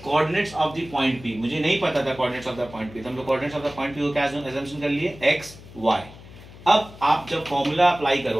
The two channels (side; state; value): left; noise; hum, 18 dB below the sound